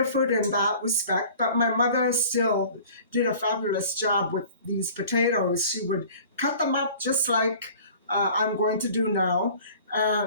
in that respect, but my mother still did a fabulous job with these potatoes. She would cut them up just like I'm going to do now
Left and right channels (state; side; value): inverted; both; correlation -0.47